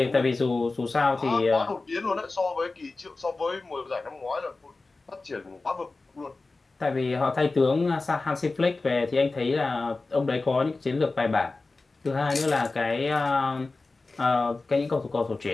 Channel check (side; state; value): right; quieter; 3.5 dB